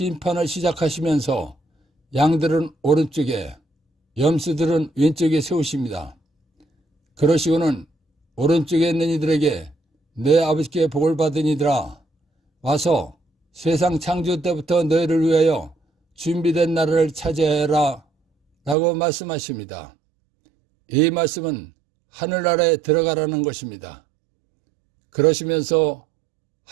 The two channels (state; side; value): drops out; left; at 18.8 s